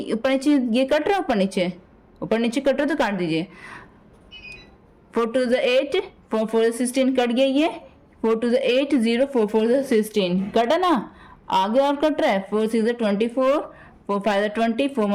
ऊपर नीचे ये कट रहा है, ऊपर नीचे ऊपर नीचे कट रहा तो काट दीजिए। 4 2 8, 4 4 16 कट गया ये। 4 2 8 0, 4 4 16 कटा ना। आगे और कट रहा है। 4 6 24, 4 5 20, 4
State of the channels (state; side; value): identical; both; correlation 1.00